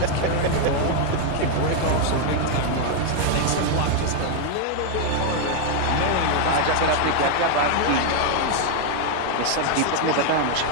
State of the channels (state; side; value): different; both; correlation 0.00